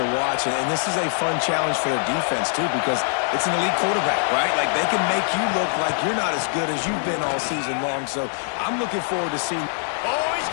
to watch, and this is a fun challenge for their defense, too, because it's an elite quarterback, right? Like, they can make you look like you're not as good as you've been all season long, so I'm looking forward to seeing. Oh, he's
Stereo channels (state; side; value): silent; right; 60 dB below the other